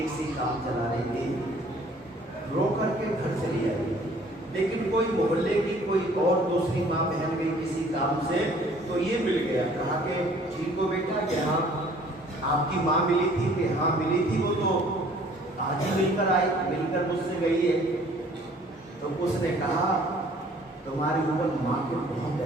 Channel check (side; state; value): both; normal; correlation 0.55